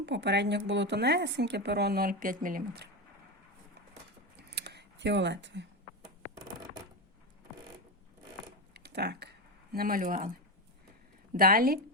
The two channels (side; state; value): both; normal; correlation 0.14